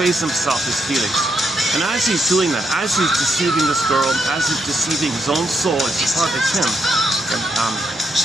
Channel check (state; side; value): normal; both; correlation 0.79